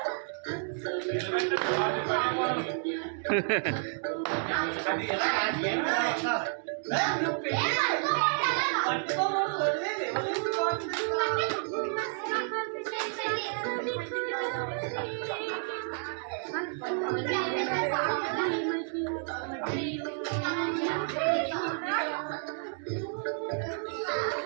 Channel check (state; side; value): silent; left; 57 dB below the other